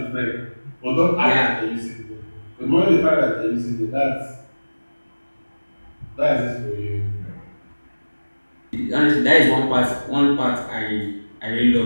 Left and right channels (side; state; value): both; inverted; correlation -1.00